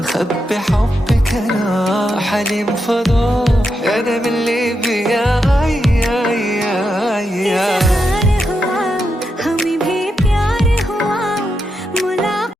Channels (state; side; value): normal; both; correlation 0.85